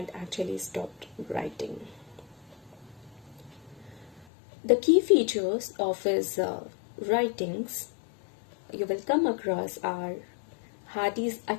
actually stopped writing. The key features of his writings you will come across are Hardy's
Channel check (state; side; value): drops out; right; at 4.2 s